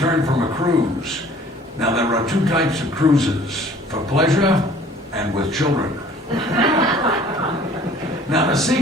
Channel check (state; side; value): normal; both; correlation 0.52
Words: from a cruise. Now, there are two types of cruises, for pleasure and with children. Now, the